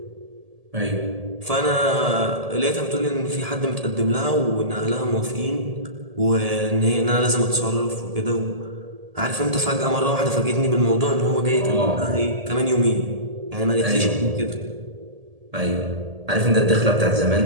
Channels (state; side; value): late; left; 1.7 ms